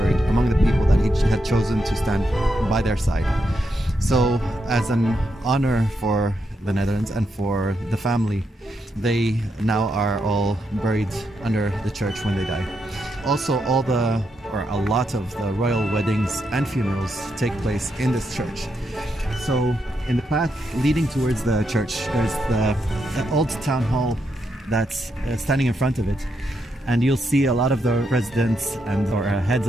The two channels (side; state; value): both; normal; correlation 0.82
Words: among the people that he had chosen to stand by their side. So as an honor for the Netherlands and for the family, they now are all buried under the church when they die. Also, a lot of the royal weddings and funerals take place in this church. So in the path leading towards the church, there's the old town hall that's standing in front of it. And you'll see a lot of the presidents or heads